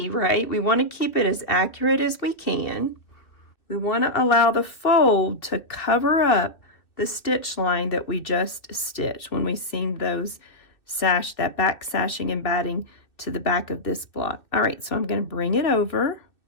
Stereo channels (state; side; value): late; right; 2.4 ms